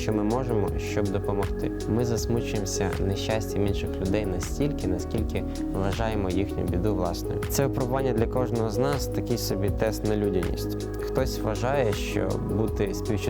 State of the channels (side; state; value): both; identical; correlation 1.00